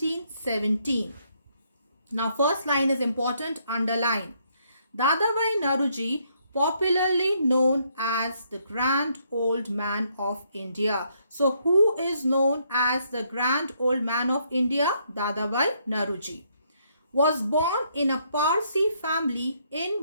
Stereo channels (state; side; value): inverted; both; correlation -0.72